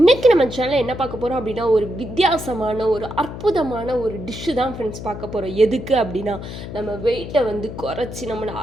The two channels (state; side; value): noise; left; hum, 10 dB below the sound